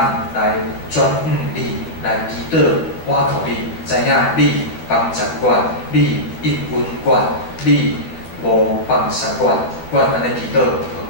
来转向你，来祈祷，我靠你，知影你帮助阮，你应允阮，你无放杀阮，阮安尼祈祷，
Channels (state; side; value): late; right; 12 ms